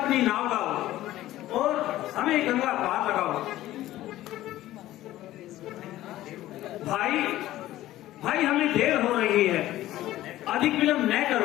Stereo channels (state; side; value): quieter; right; 15.0 dB